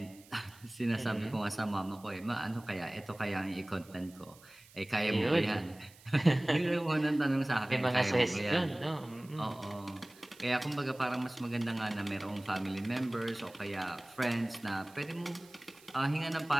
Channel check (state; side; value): noise; right; hiss, 24 dB below the sound